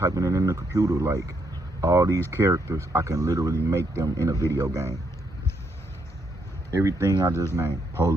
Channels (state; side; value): normal; both; correlation 0.76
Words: it in the computer. Like, all these characters, I can literally make them in a video game. Everything I just named,